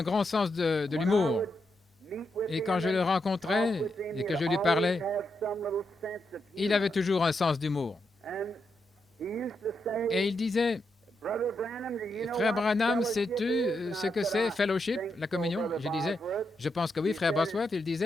grand sens de l'humour. Et quand je le rencontrais et que je lui parlais, il avait toujours un sens d'humour. Et il disait, « Frère Branham, sais-tu ce que c'est fellowship, la communion ?» Je disais, « Je pense que oui, frère Bosworth. » Il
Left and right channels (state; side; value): normal; both; correlation 0.83